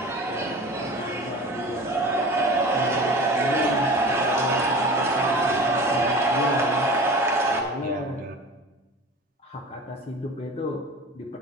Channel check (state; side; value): normal; both; correlation 0.37